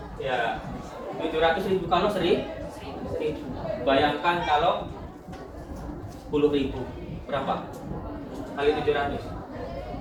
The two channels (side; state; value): both; identical; correlation 1.00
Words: Ya. 700.000 kalau 1.000. Bayangkan kalau 10.000. Berapa? Kali 700.